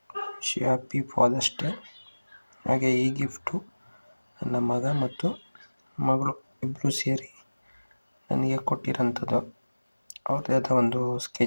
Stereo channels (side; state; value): both; inverted; correlation -1.00